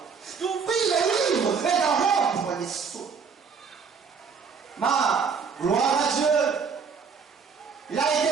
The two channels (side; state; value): left; quieter; 5.9 dB